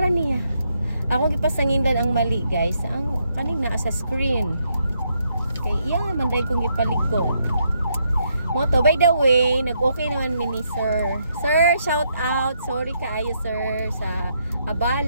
niya, ako gipasangindan ang mali guys. Ang kanina sa screen. Kay iya manday kong gipalit ko. Moto, by the way, nag-okay naman mini sir. Sir, shout out. Sorry kaayo sir sa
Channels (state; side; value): inverted; both; correlation -0.76